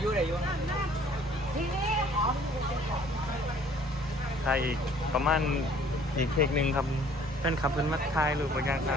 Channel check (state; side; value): normal; both; correlation 0.56